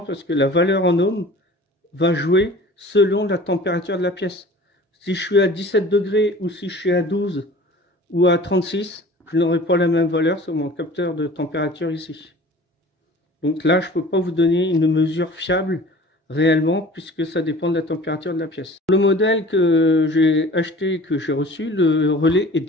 parce que la valeur en ohms va jouer selon la température de la pièce. Si je suis à 17 degrés ou si je suis à 12 ou à 36, je n'aurai pas la même valeur sur mon capteur de température ici. Donc là, je ne peux pas vous donner une mesure fiable réellement, puisque ça dépend de la température de la pièce. Le modèle que j'ai acheté, que j'ai reçu, le relais est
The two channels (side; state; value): both; normal; correlation 0.44